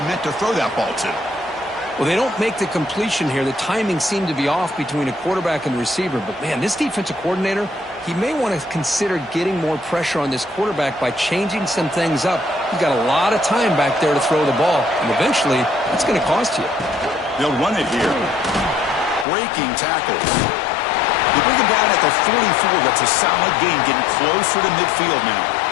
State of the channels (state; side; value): drops out; right; at 19.2 s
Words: meant to throw that ball to. Well, they don't make the completion here. The timing seemed to be off between a quarterback and the receiver. But, man, this defensive coordinator, he may want to consider getting more pressure on this quarterback by changing some things up. He's got a lot of time back there to throw the ball. And eventually, that's going to cost you. They'll run it here. Breaking tackles. They bring him down at the 44. That's a solid gain, getting closer to midfield now.